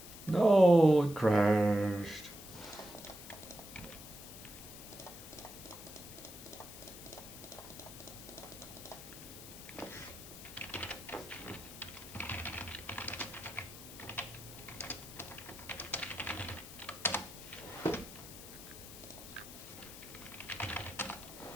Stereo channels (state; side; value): noise; left; hiss, 14 dB below the sound